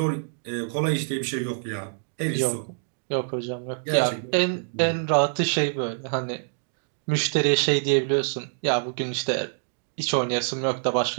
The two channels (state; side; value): silent; left; digital silence